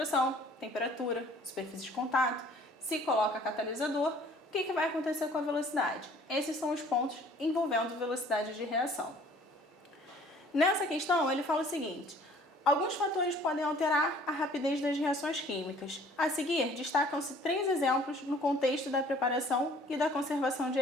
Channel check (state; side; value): normal; both; correlation 0.54